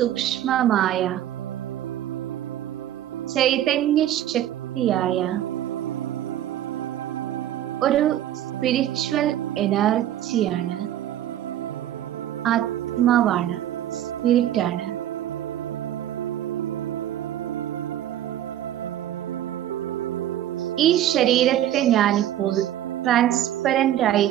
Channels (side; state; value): left; quieter; 12.0 dB